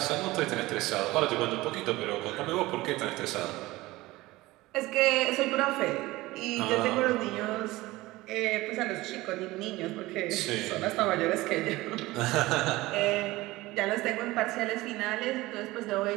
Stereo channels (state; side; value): quieter; left; 19.2 dB